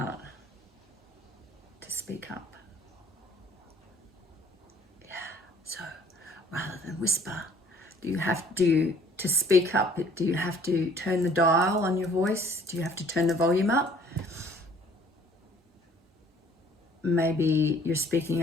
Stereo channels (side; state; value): both; normal; correlation 0.56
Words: to speak up. Yeah, so rather than whisper, to speak up, do you have to turn the dial on your voice? Do you have to turn the volume up? Maybe you're